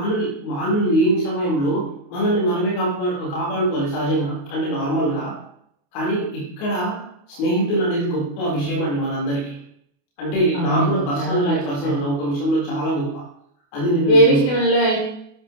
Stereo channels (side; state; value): right; late; 28 ms